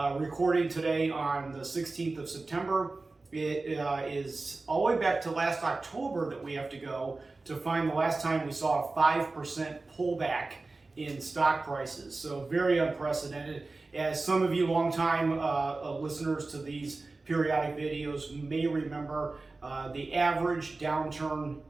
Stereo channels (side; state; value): left; quieter; 3.5 dB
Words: Recording today on the 16th of September, it is all the way back to last October that we have to go to find the last time we saw a 5% pullback in stock prices. So very unprecedented. As some of you longtime listeners to these periodic videos may remember, the average downturn